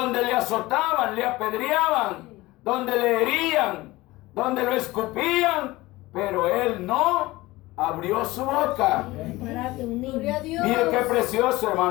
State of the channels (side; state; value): right; quieter; 19.6 dB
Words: le azotaban, le apedreaban, donde le herían, donde lo escupían, pero Él no abrió su boca. Párate, un niño. Mire qué precioso,